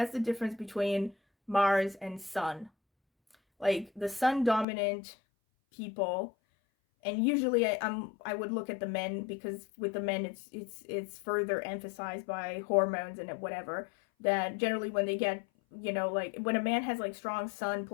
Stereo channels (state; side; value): drops out; right; at 4.7 s